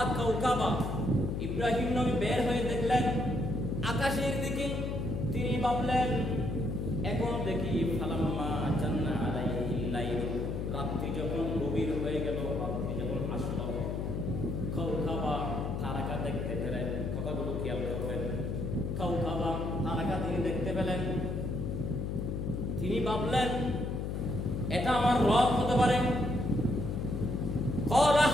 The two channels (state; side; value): noise; left; hum, 2 dB below the sound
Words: কাওকাবা, ইব্রাহিম নবী বের হয়ে দেখলেন আকাশের দিকে। তিনি ভাবলেন এখন দেখি ফালাম্মা জান্না আলাইহিল লাইলু, রাত্রি যখন গভীর হয়ে গেল, রাত্রি যখন আসলো, কাওকাবা তারকা দেখতে পেলেন। কথাগুলো খেয়াল করবেন। কাওকাবা তারকা তিনি দেখতে পেলেন। তিনি ভাবলেন এটা আমার রব হতে পারে। ক্বালা